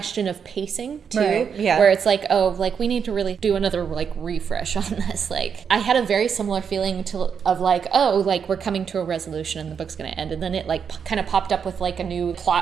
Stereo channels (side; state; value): left; quieter; 6.9 dB